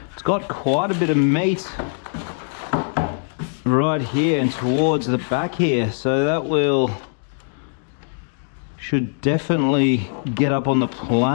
It's got quite a bit of meat right here and towards the back here, so that should definitely get up on the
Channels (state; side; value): silent; right; digital silence